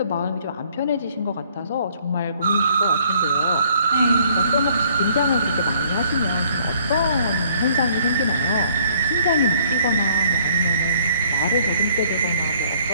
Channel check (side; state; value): both; inverted; correlation -0.62